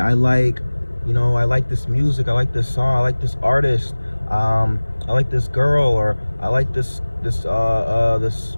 like this music, I like this song, I like this artist, I like this girl, or I like this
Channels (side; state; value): both; inverted; correlation -1.00